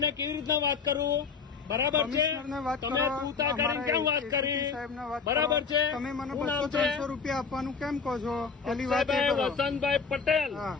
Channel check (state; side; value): quieter; right; 5.4 dB